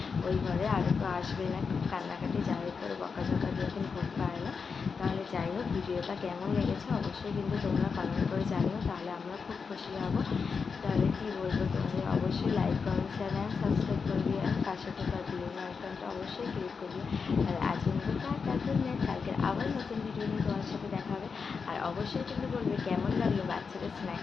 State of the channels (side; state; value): right; quieter; 5.4 dB